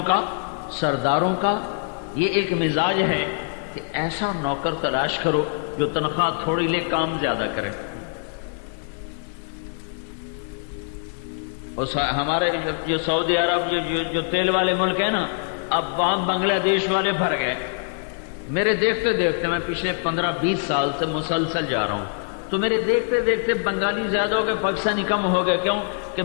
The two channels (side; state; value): right; silent; 63 dB below the other